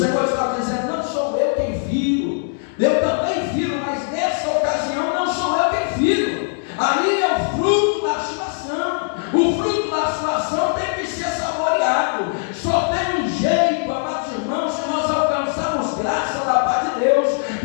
está dizendo: não sou eu quem firo, eu também firo, mas nessa ocasião não sou eu quem firo. Aí é o fruto da sua ação. O fruto da sua ação tem que ser saboreado. Só tem um jeito, amados irmãos, se nós alcançarmos graça da parte de Deus,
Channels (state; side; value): silent; right; 64 dB below the other